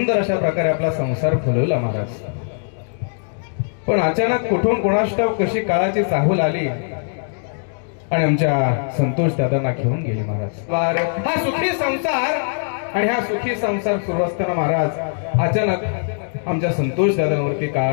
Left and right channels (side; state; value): right; silent; digital silence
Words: अशा प्रकारे आपला संसार फुलवला महाराज. पण अचानक कुठून कोणास ठाऊक कशी काळाची चाहूल आली आणि आमच्या संतोष दादांना घेऊन गेले महाराज. हा सुखी संसार आणि हा सुखी संसार सुरू असताना महाराज अचानक आमच्या संतोष दादांवरती